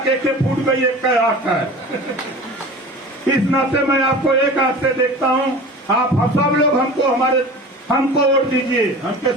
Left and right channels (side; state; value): both; normal; correlation 0.37